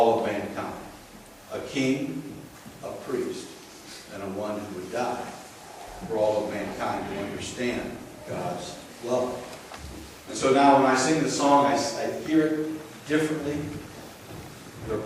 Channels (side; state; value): both; identical; correlation 1.00